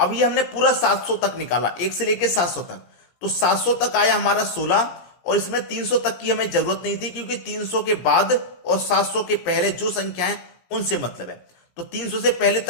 ये हमने पूरा 700 तक निकाला, 1 से लेकर 700 तक, तो 700 तक आया हमारा 16 और इसमें 300 तक की हमें जरूरत नहीं थी क्योंकि 300 के बाद और 700 के पहले जो संख्या है उनसे मतलब है। तो 300 से पहले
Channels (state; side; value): late; right; 17 ms